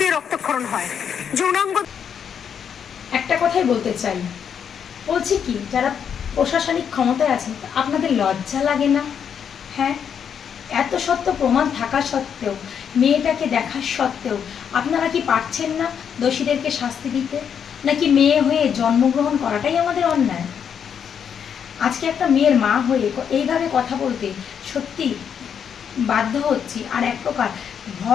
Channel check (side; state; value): right; quieter; 7.8 dB